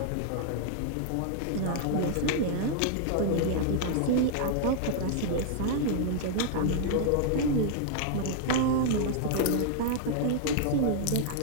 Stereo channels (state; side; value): different; both; correlation 0.00